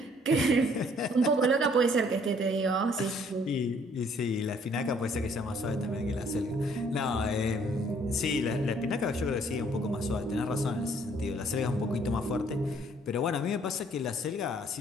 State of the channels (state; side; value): normal; both; correlation 0.62